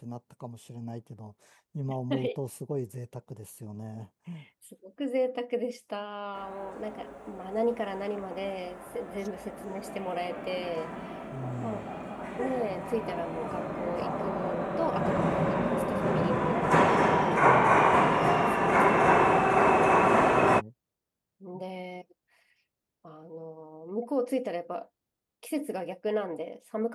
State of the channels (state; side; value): identical; both; correlation 1.00